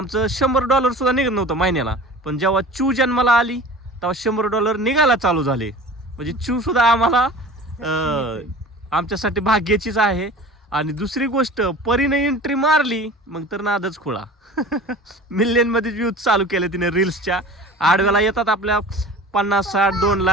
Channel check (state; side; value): normal; both; correlation 0.40